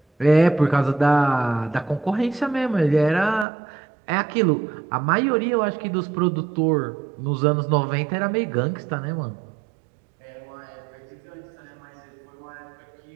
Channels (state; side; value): drops out; left; at 3.5 s